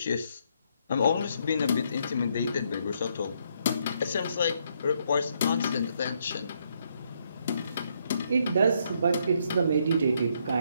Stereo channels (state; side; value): inverted; both; correlation -0.73